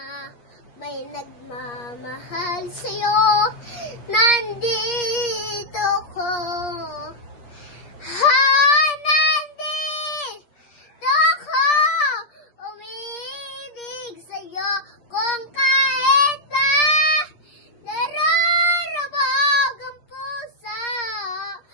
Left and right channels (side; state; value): right; late; 8.5 ms